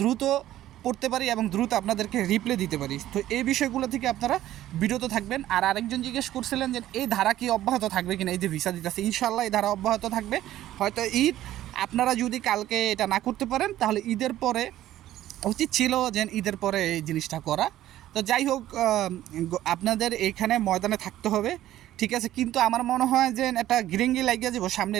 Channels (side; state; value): left; quieter; 13.6 dB